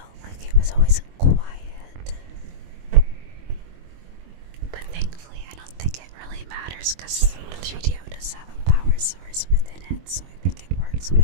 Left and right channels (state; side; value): late; left; 23 ms